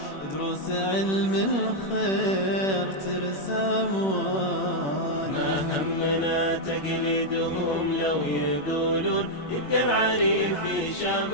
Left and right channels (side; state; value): right; late; 21 ms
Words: ودروس علم الخير ترسى مواني. ما همنا تقليدهم لو يقولون يبقى العريف في